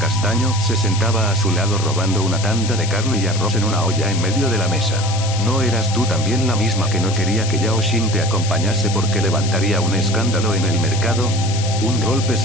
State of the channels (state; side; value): noise; left; hiss, 8 dB below the sound